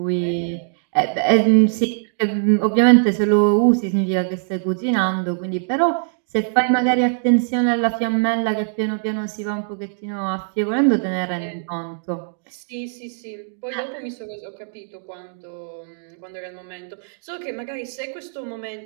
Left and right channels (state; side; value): silent; left; digital silence